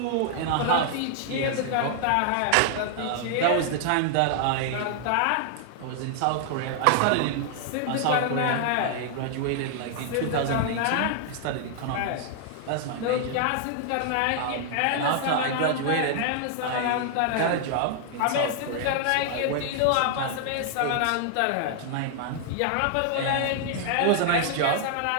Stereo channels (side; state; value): both; different; correlation 0.00